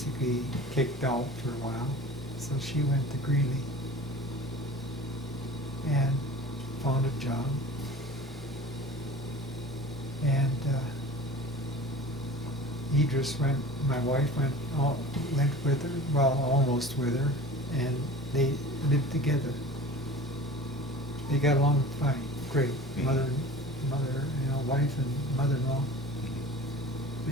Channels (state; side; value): normal; both; correlation 0.39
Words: kicked out for a while, so she went to Greeley and found a job. And Edris my wife went with her, well, almost with her, and they lived together. They got along fine, great. Mother, wife and mother-in-law.